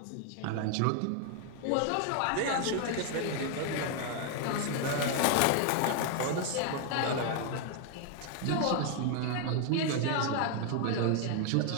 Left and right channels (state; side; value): different; both; correlation 0.00